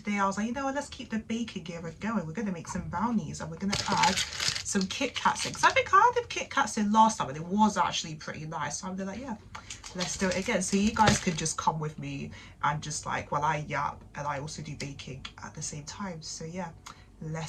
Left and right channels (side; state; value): both; identical; correlation 1.00